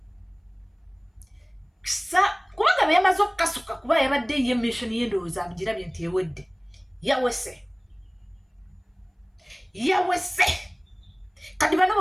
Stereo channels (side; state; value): both; identical; correlation 1.00